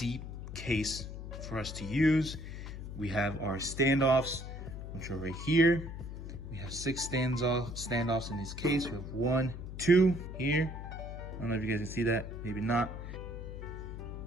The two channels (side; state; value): left; noise; hum, 9 dB below the sound